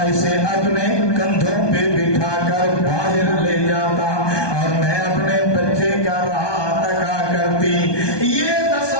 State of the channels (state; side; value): late; right; 1.2 ms